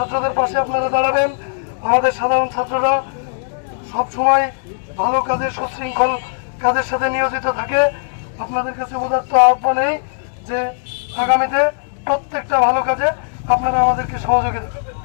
পাশে আপনারা দাঁড়াবেন। আমাদের সাধারণ ছাত্ররা সবসময় ভালো কাজে, সুশৃঙ্খল কাজের সাথে নিয়োজিত থাকে। আপনাদের কাছে উদাত্ত আহ্বান এই যে আগামীতে প্রত্যেকটা ভালো কাজে আপনারা আমাদেরকে সহযোগিতা করবেন।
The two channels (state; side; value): silent; right; digital silence